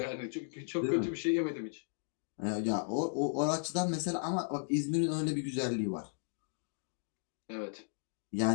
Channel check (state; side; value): silent; right; digital silence